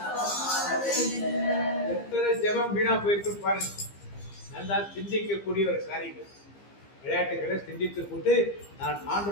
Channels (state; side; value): late; right; 15 ms